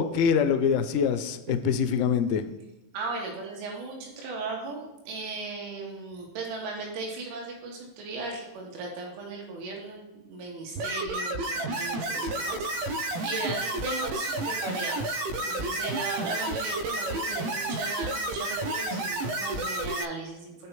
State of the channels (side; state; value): left; late; 18 ms